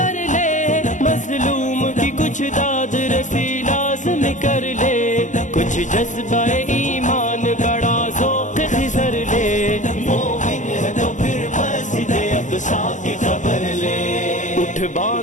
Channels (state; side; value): late; right; 0.36 ms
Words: لے مظلوم کی کچھ داد رسی لازم کر لے کچھ جذبہ ایمان بڑا ذوق خضر لے مومن ہے تو پھر مسجد اقصی کی خبر لے اٹھ